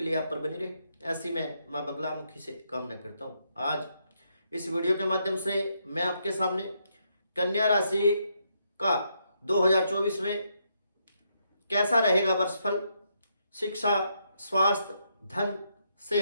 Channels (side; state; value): both; inverted; correlation -0.78